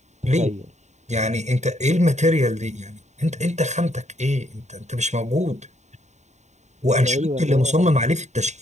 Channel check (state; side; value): late; left; 0.34 ms